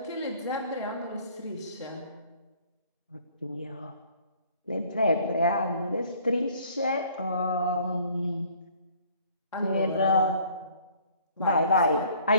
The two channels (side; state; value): both; inverted; correlation -0.56